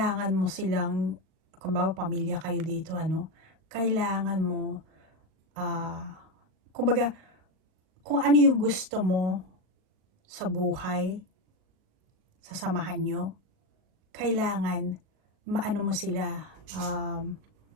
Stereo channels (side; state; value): left; late; 38 ms